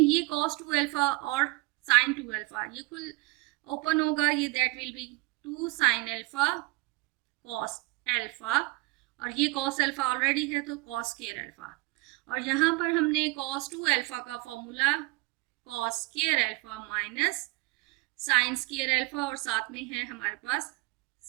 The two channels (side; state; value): left; quieter; 24.3 dB